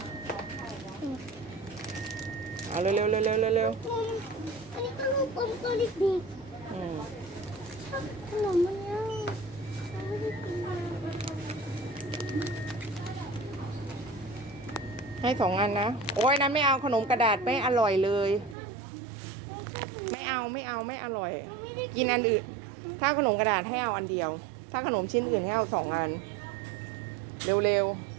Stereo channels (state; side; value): drops out; left; at 18.6 s